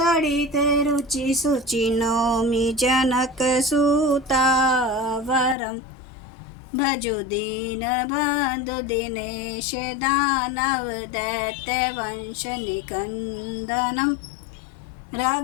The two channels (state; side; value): drops out; right; at 5.6 s